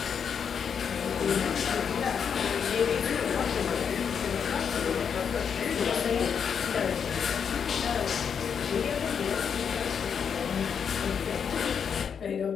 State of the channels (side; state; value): right; quieter; 7.1 dB